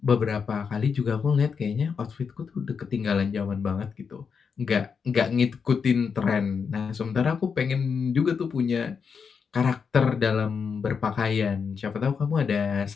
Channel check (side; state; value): right; quieter; 6.0 dB